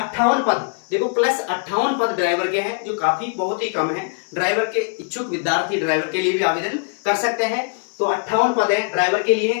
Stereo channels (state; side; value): quieter; right; 38.3 dB